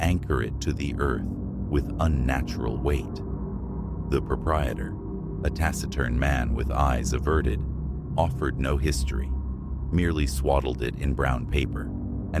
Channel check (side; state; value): both; identical; correlation 1.00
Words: it to the earth with unnatural weight. The proprietor, a taciturn man with eyes averted, offered no history, merely swaddled it in brown paper